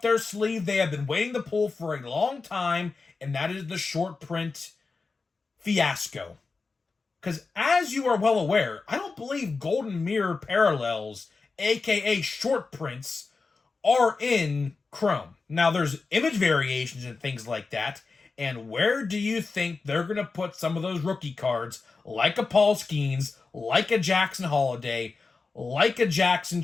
their sleeve they have been waiting to pull for a long time, and that is the short print fiasco. Because as you are well aware, I don't believe Golden Mirror parallels, aka short prints, are in Chrome. Now, there's image variations and things like that. And where do you think they're going to put some of those rookie cards, like a Paul Skeens, like a Jackson Holiday, like a Jackson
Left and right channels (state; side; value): quieter; right; 4.2 dB